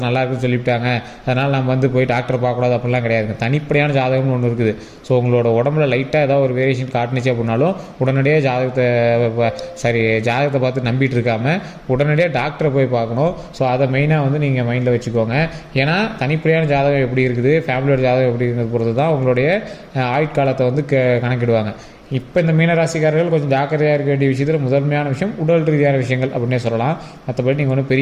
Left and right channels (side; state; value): both; identical; correlation 1.00